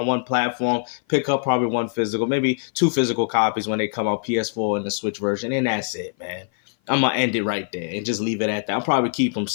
one platform, pick up probably one physical, maybe 2 physical copies when they come out, PS4 and the Switch version, and that's it, man. I'm going to end it right there and just leave it at that. I'll probably keep them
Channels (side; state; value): right; silent; 56 dB below the other